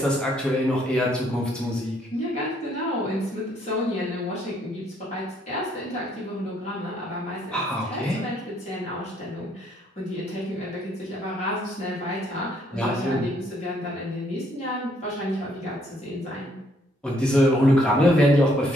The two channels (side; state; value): both; normal; correlation 0.68